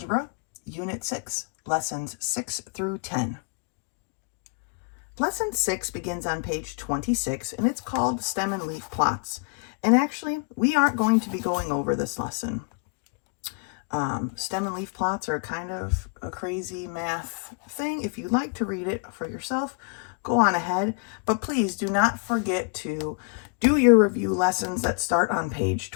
Unit 6, Lessons 6 through 10. Lesson 6 begins on page 26, and it's called Stem and Leaf Plots. And actually, we aren't going to be going over this lesson. Stem and leaf plots are kind of a crazy math thing. If you'd like to read it for yourself, go on ahead. But please do not forget to do your review lessons that start on page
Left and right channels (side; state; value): right; quieter; 40.0 dB